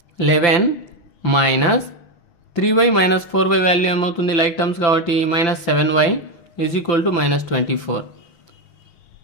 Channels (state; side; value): late; right; 5.9 ms